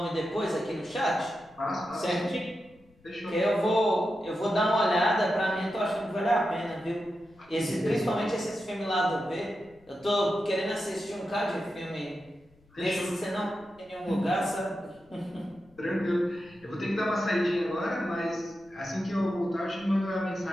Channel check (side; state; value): left; noise; rumble, 30 dB below the sound